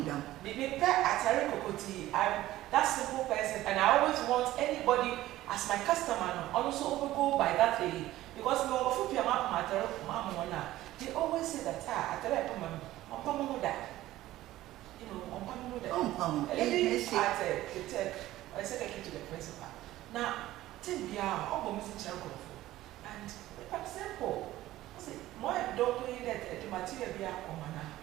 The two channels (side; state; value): left; quieter; 15.5 dB